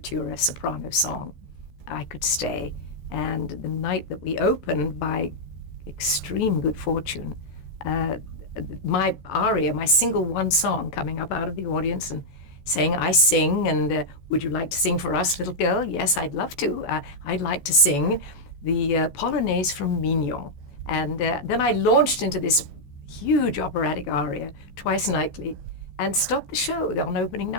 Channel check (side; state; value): right; late; 14 ms